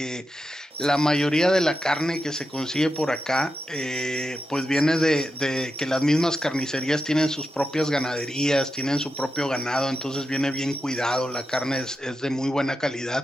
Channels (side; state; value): both; normal; correlation 0.88